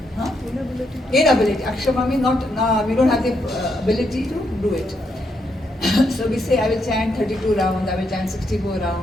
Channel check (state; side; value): normal; both; correlation 0.78